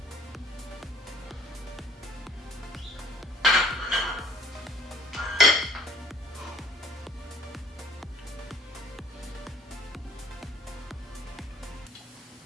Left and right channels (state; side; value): normal; both; correlation 0.56